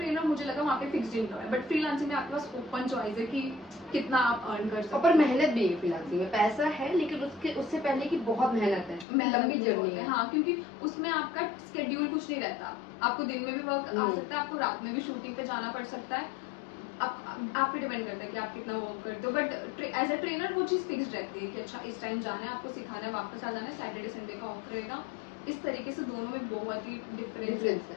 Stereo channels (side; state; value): right; drops out; at 9.1 s